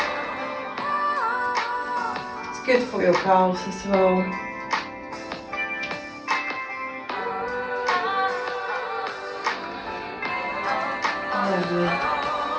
It's good for your calves as well. Lovely.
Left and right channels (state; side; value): identical; both; correlation 1.00